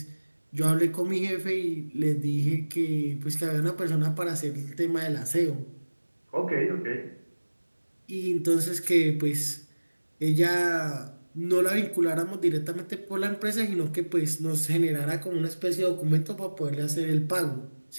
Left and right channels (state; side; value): inverted; both; correlation -1.00